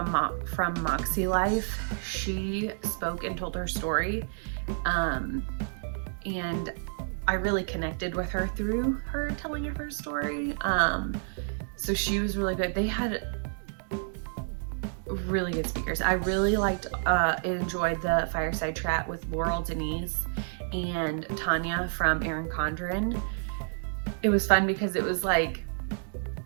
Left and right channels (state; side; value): silent; left; digital silence